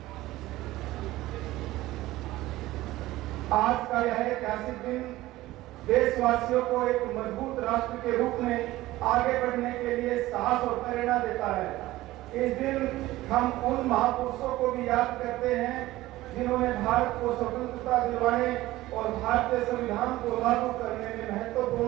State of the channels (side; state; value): left; quieter; 17.0 dB